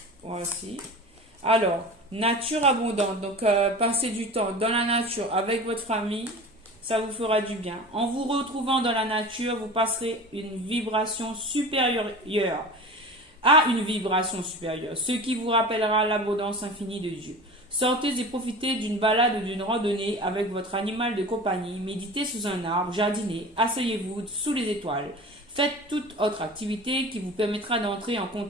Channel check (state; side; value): normal; both; correlation 0.35